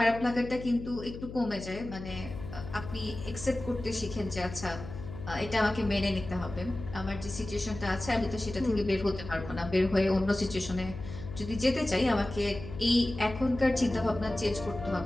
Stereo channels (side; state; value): left; noise; hum, 11 dB below the sound